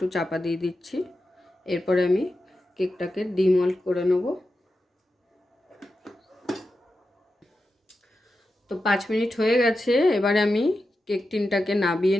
চাপা দিয়ে দিচ্ছি। এরপরে আমি কেকটাকে ডিমল্ট করে নেব। তো 5 মিনিট হয়ে গেছে। এবারে আমি কেক টিনটাকে নাবিয়ে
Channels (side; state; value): both; normal; correlation 0.90